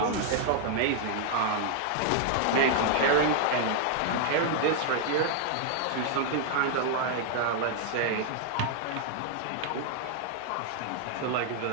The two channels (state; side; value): different; both; correlation -0.01